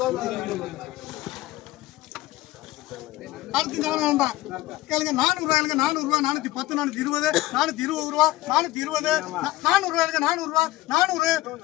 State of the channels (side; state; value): right; quieter; 17.2 dB